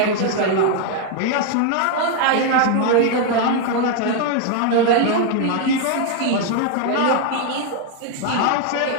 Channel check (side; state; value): both; different; correlation 0.01